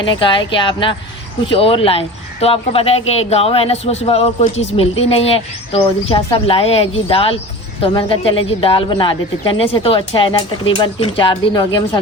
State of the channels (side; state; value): both; normal; correlation 0.35